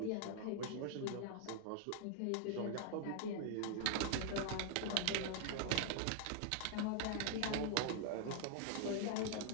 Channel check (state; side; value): different; both; correlation 0.00